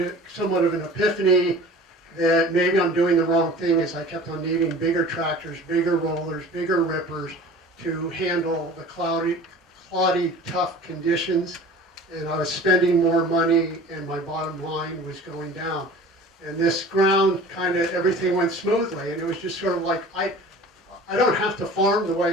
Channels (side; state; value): both; normal; correlation 0.42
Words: of an epiphany that maybe I'm doing the wrong thing as I kept on needing bigger tractors, bigger rollers, bigger rippers to handle the cloddy, tough conditions, and I was spending more money and my bottom line was going down. And this ground, kind of everything went smoothly, and it was just sort of like, I don't have to farm the